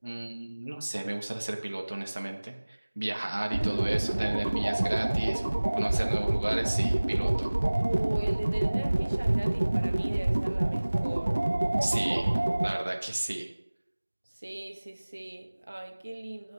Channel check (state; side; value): inverted; both; correlation -1.00